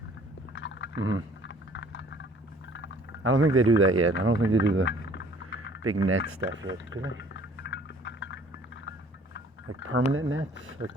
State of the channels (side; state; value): both; normal; correlation 0.55